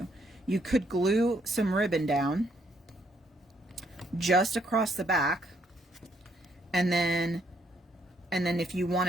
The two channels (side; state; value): both; normal; correlation 0.71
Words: You could glue some ribbon down just across the back, and then if you